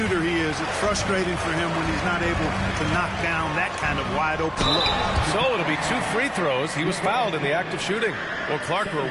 he is. It's frustrating for him when he's not able to knock down that kind of wide open look. So it'll be 2 free throws. He was fouled in the act of shooting. Well, Clark, we're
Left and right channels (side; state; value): both; identical; correlation 1.00